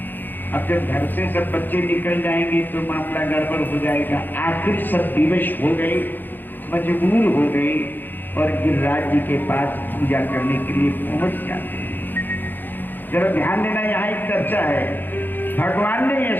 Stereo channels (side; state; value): right; late; 0.091 ms